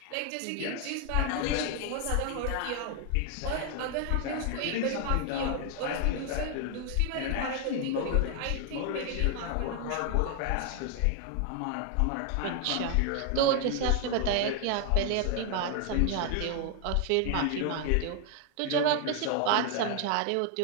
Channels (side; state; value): both; different; correlation 0.00